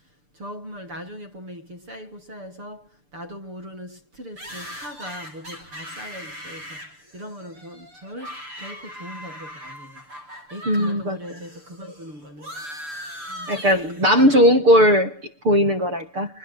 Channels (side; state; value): left; late; 6.8 ms